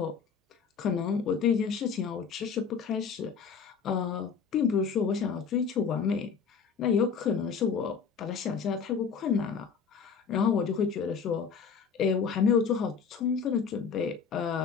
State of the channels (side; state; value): right; quieter; 6.1 dB